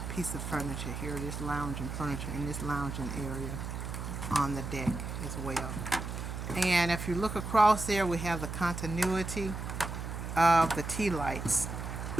piece of furniture here, this lounging furniture in this lounging area on the deck as well. And if you look across there, we have the continuity of the tea lights.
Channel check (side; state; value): right; noise; hum, 6 dB below the sound